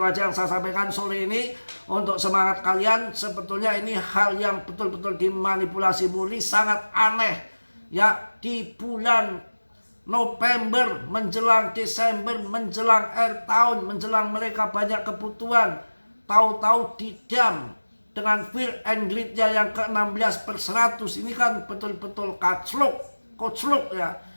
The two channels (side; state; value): both; inverted; correlation -1.00